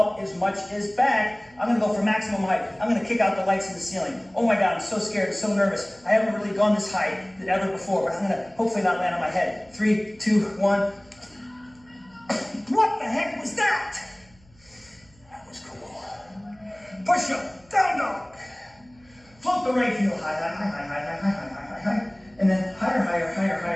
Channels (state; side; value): noise; right; hum, 29 dB below the sound